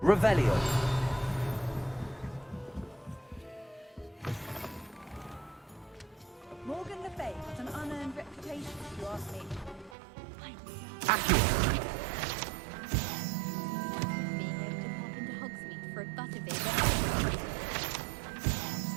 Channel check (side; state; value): left; drops out; at 10.0 s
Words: Revelio. Morgan Le Fay has an unearned reputation, if you ask me. Accio. Being able to pop into Hogsmeade for a butterbeer.